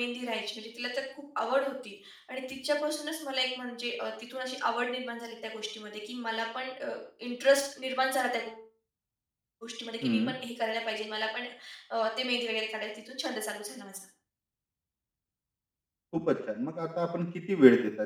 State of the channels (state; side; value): identical; both; correlation 1.00